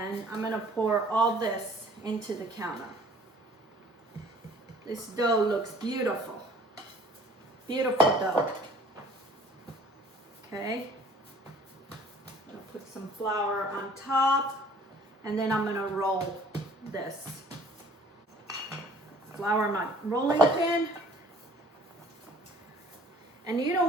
I'm gonna pour all this into the counter. This dough looks beautiful. Beautiful dough. Okay. I'm gonna put some flour on top, and then I'm gonna roll this. Flour my rolling pin. And you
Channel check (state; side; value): normal; both; correlation 0.53